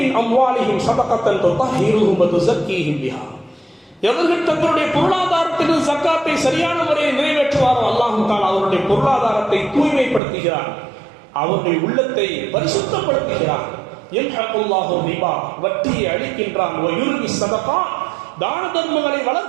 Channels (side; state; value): left; drops out; at 10.2 s